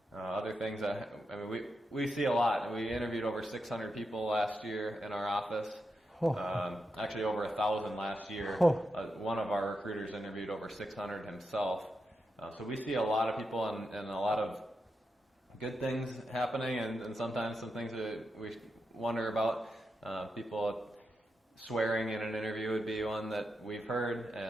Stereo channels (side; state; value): both; normal; correlation 0.86